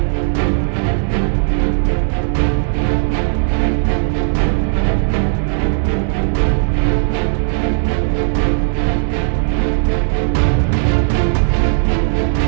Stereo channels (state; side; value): silent; left; digital silence